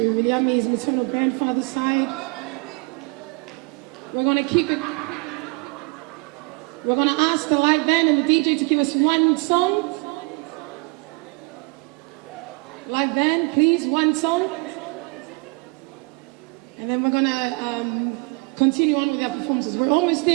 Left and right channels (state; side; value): quieter; left; 29.7 dB